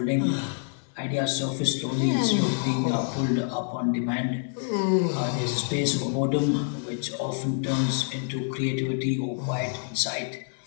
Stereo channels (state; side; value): silent; right; 59 dB below the other